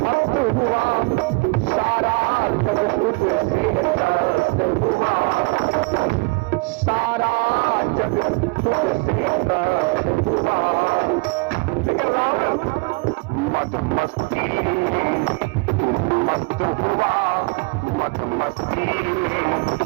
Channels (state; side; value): quieter; left; 28.1 dB